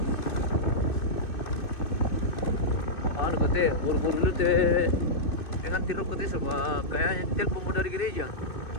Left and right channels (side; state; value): right; late; 2.6 ms